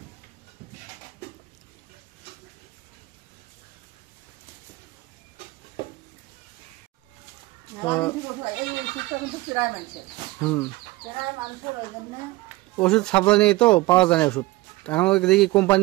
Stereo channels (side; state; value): left; quieter; 19.9 dB